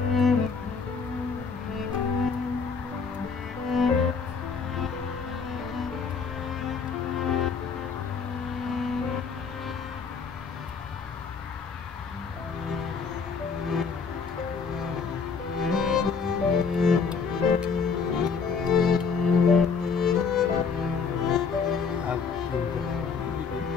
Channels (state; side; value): quieter; right; 5.5 dB